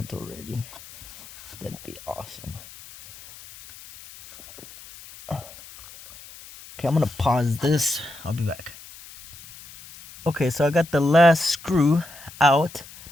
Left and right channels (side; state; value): left; noise; hiss, 18 dB below the sound